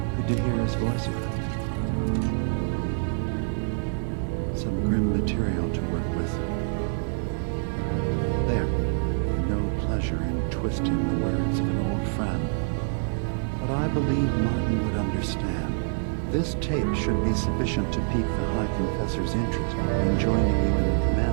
Good to hear his voice. Some grim material to work with. There. No pleasure in twisting the words of an old friend. But I believe Martin would understand. This tape should be sufficient to pique the High Confessor's interest in joining you in the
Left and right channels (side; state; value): left; silent; digital silence